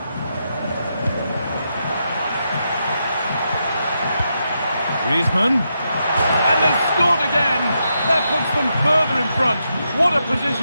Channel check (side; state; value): both; inverted; correlation -0.83